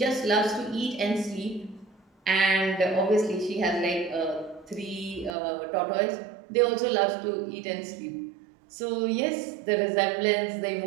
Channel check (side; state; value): left; drops out; at 5.4 s